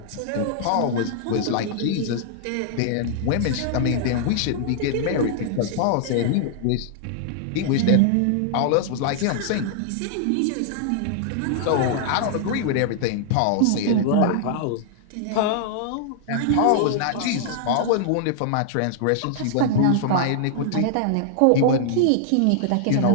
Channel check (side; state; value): both; different; correlation -0.01